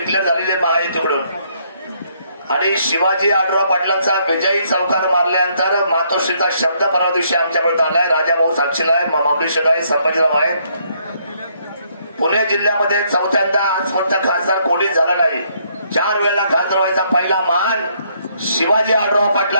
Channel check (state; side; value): inverted; both; correlation -0.70